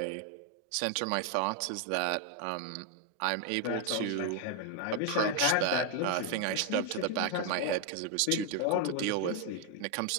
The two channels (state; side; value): different; both; correlation 0.01